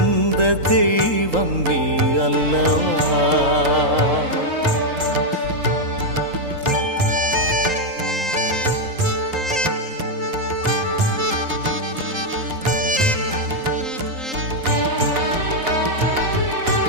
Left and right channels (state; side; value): late; left; 3.8 ms